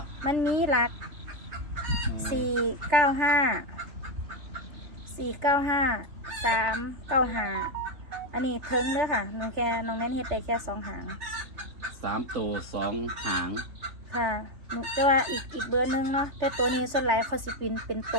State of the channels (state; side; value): late; left; 3.4 ms